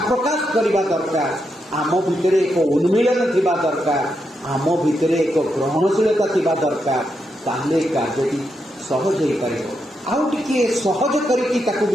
ପ୍ରକାଶ କରିବା ଦରକାର। ଆମ ଭିତରେ ଏକ ଉନ୍ମିଳନ ଥିବା ଦରକାର। ଆମ ଭିତରେ ଏକ ଗ୍ରହଣଶୀଳତା ଥିବା ଦରକାର। ତାହେଲେ କାର୍ଯ୍ୟଟି ସହଜ ହୋଇପାରିବ। ଆଉ ଟିକିଏ ସହଜ କରିକି ତାକୁ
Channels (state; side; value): normal; both; correlation 0.83